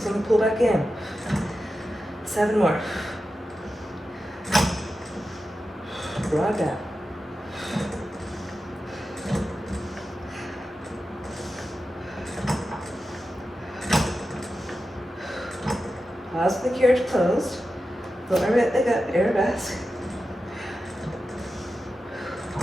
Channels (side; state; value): both; normal; correlation 0.91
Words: on the pull back in. 7 more. Broad back. Pause with the carriage closed. Float my right leg up, arabesque.